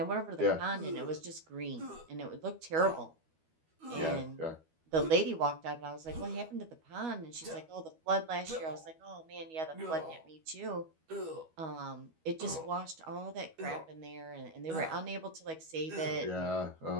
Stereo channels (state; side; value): late; left; 12 ms